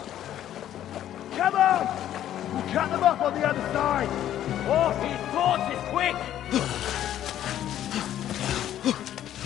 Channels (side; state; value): right; quieter; 11.6 dB